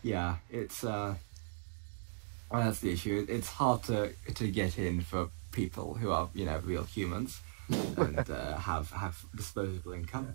it's that's the issue. It's hard to get in for people who are real humans. and have disposable income,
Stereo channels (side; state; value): left; silent; digital silence